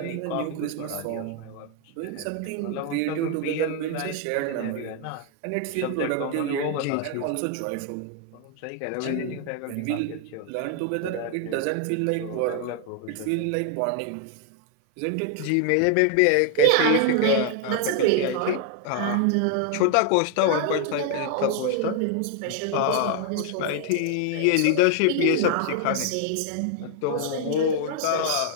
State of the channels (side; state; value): both; different; correlation 0.00